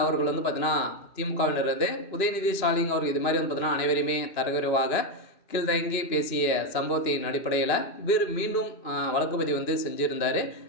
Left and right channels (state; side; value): late; right; 2.9 ms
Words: அவர்கள் பார்த்தீங்கன்னா திமுகவினர் உதயநிதி ஸ்டாலின் அவர்கள் இது மாதிரி பார்த்தீங்கன்னா அனைவருமே தரக்குறைவாக கீழ்தங்கி பேசிய சம்பவத்தின் அடிப்படையில் இவர் மீண்டும் வழக்குப்பதிவு செஞ்சுருந்தார்.